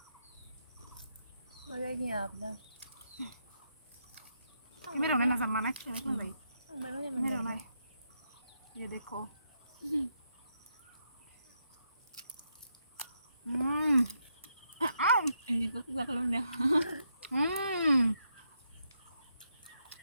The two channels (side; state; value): both; inverted; correlation -0.80